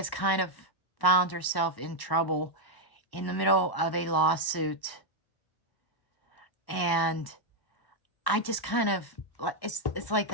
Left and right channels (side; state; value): right; late; 1.0 ms